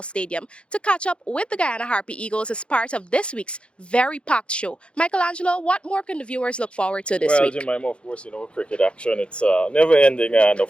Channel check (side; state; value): right; late; 0.058 ms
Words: Stadium to catch up with the Guyana Harpy Eagles as part of this week's very packed show. Michelangelo, what more can the viewers look forward to this Well, week? Jemima, of course, cricket action, it's never ending. And